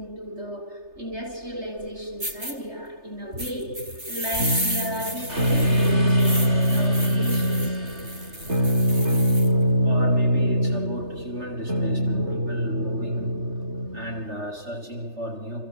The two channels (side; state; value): left; late; 3.3 ms